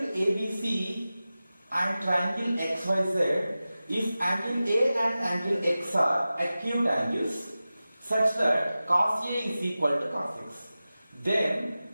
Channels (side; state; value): both; inverted; correlation -0.95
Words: ABC and triangle XYZ, if angle A and angle X are acute angles such that cos A is equal to cos X, then